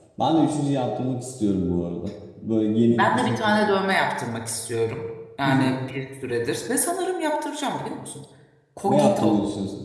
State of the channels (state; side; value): identical; both; correlation 1.00